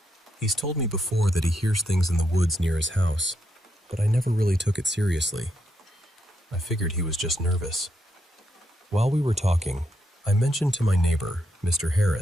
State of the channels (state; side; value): normal; both; correlation 0.80